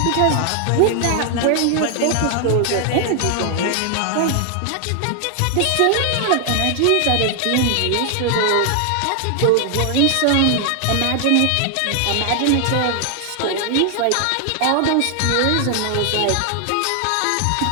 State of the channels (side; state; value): both; different; correlation 0.00